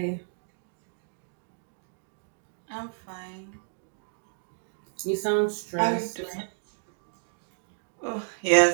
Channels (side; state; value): left; silent; digital silence